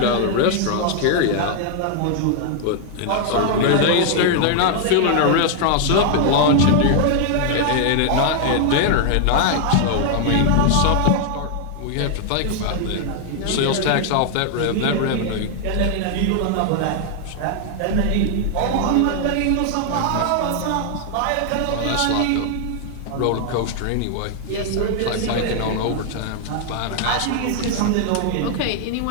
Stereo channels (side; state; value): both; different; correlation 0.00